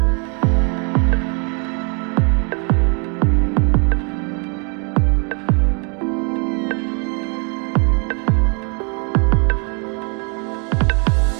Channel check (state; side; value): quieter; left; 36.8 dB